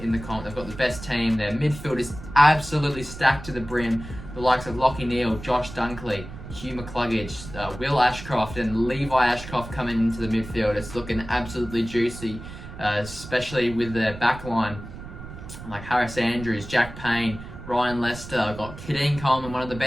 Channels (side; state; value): right; noise; rumble, 13 dB below the sound